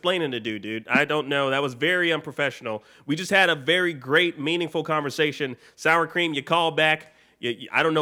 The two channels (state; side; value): identical; both; correlation 1.00